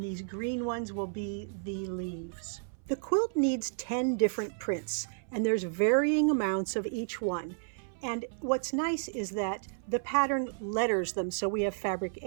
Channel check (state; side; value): silent; left; 56 dB below the other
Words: green ones will be the leaves. The quilt needs 10 different prints, and there's varying amounts of each one. And what's nice is that the pattern letters them. So we have fabric